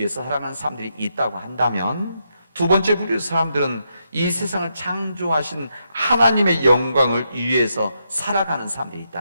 살아가는 사람들이 있다고 한다면 두 번째 부류의 사람들은 이 세상을 창조하신 하나님의 영광을 위해서 살아가는 사람들이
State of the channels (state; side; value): inverted; both; correlation -0.81